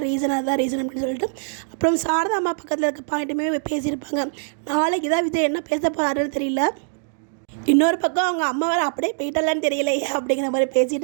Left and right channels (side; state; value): left; silent; digital silence